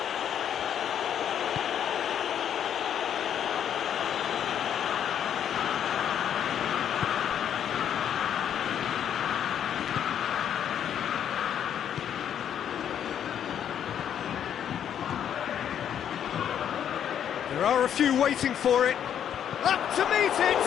There are a few waiting for it. Up to meet it!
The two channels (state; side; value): quieter; right; 9.3 dB